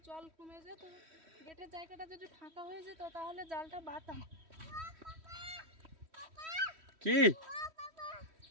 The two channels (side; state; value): left; late; 3.1 ms